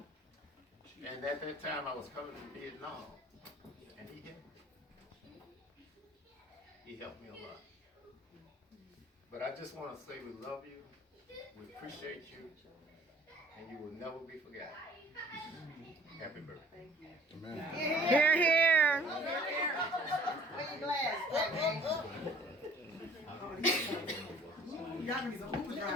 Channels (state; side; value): normal; both; correlation 0.52